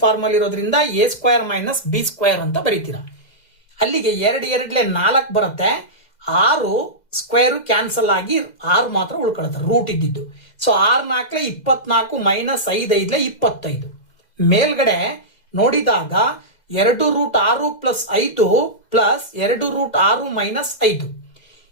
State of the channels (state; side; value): late; right; 2.0 ms